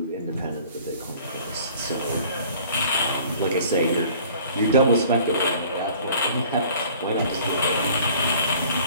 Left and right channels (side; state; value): both; inverted; correlation -0.51